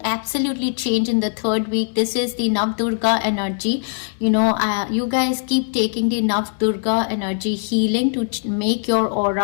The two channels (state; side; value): silent; right; digital silence